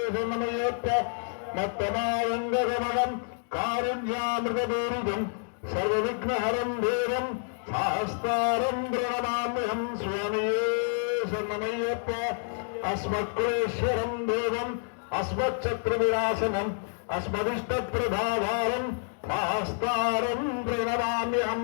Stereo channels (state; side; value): silent; right; digital silence